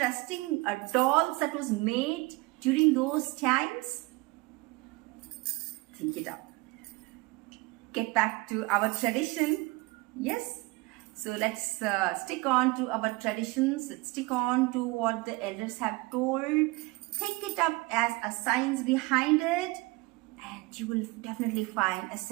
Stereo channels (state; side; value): quieter; left; 23.6 dB